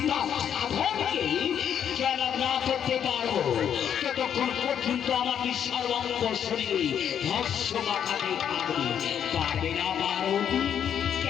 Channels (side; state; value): right; quieter; 8.9 dB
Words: সাধনকে জ্ঞান না করতে পারবো ততক্ষণ পর্যন্ত আমাদের সর্বাঙ্গ শরীরে ভস্য মাথাতে থাকবে। পারবে না পার্বতী?